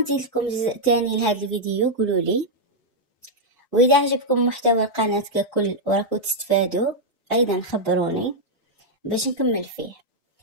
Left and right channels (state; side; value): normal; both; correlation -0.03